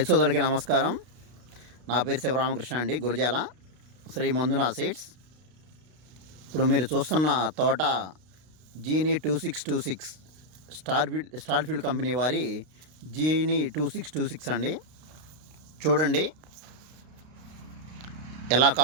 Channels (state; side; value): late; left; 32 ms